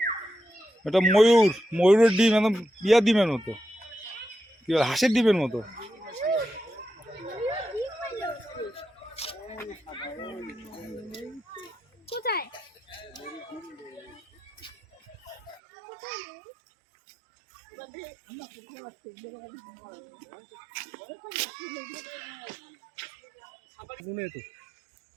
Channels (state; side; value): drops out; left; at 15.6 s